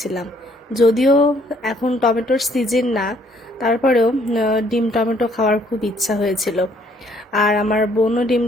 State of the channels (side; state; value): both; normal; correlation 0.65